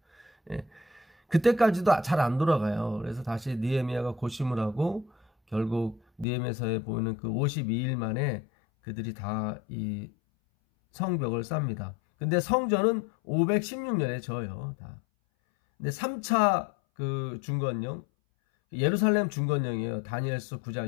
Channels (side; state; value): right; drops out; at 6.2 s